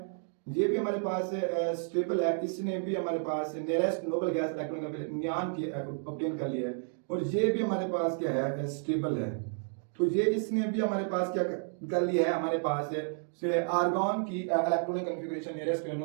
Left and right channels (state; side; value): silent; left; 57 dB below the other